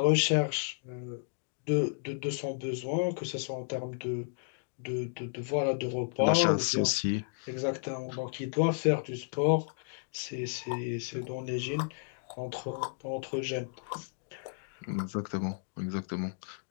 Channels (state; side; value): silent; right; digital silence